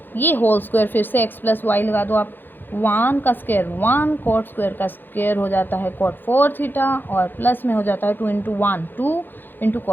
ये होल स्क्वायर, फिर से x प्लस वाई लगा दो आप, 1 का स्क्वायर 1, कॉट स्क्वायर का स्क्वायर हो जाता है कॉट 4 थीटा, और प्लस में हो जाता है 2 into 1 2 into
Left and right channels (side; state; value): right; late; 0.093 ms